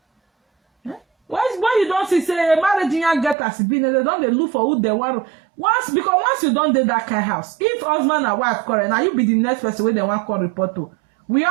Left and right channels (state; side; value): drops out; left; at 3.4 s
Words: When you don't see say marriage you get as been, they don't they look for who they want. Once you don't do that kind of house, if husband and wife quarrel, now you be the next person where they want call report to. We